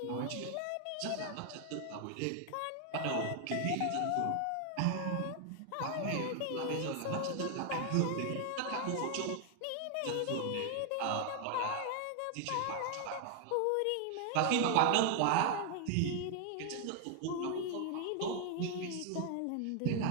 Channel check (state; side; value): different; both; correlation 0.00